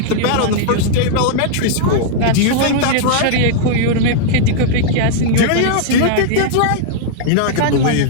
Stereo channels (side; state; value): both; different; correlation -0.01